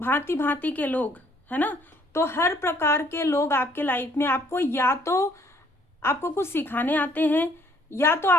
भांति के लोग, है ना, तो हर प्रकार के लोग आपके लाइफ में आपको या तो आपको कुछ सिखाने आते हैं या तो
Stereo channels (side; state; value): both; normal; correlation 0.64